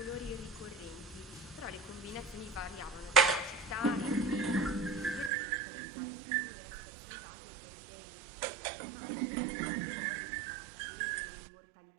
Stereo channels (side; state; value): left; drops out; at 5.3 s